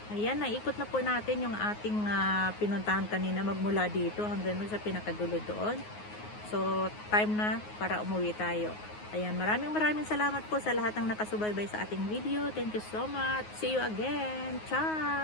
Ayan, naikot na po natin yung ating pinuntahan kanina magmula dito hanggang sa pinakadulo doon. So, time na para umuwi tayo. Ayan, maraming salamat po sa lahat ng nakasubaybay sa ating video. Thank you so much. See you again.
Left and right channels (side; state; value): right; late; 9.5 ms